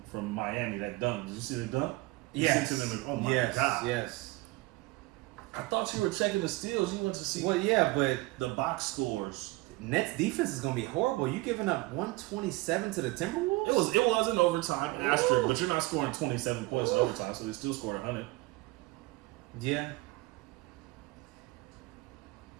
from Miami, that dunk. Did you see the dunk? Yes. Oh my God. Yes. I thought you were checking the steals. You went to see. Well, yeah, but the box scores. Nets defense is gonna be horrible. You giving up 127 to the Timberwolves? It was in overtime, asterisk, but you're not scoring 27 points in overtime, so they still scored 100. Yeah.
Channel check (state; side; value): quieter; left; 21.2 dB